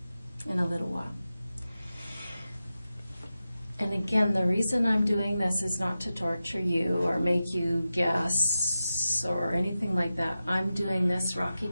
in a little while. And again, the reason I'm doing this is not to torture you or make you guess or anything like that. I'm doing this, Rocky,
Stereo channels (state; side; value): inverted; both; correlation -0.93